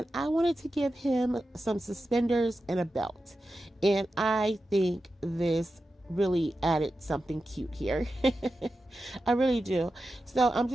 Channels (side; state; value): both; normal; correlation 0.91